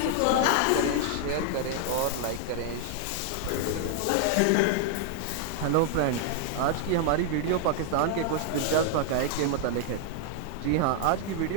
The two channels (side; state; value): both; different; correlation 0.00